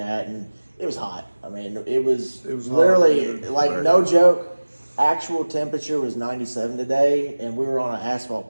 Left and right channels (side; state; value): both; inverted; correlation -1.00